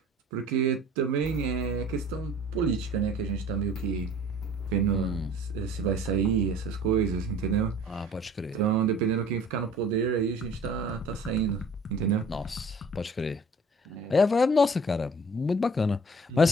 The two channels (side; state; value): both; normal; correlation 0.49